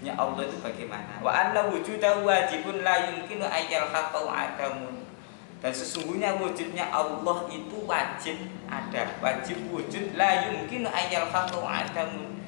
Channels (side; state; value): right; silent; digital silence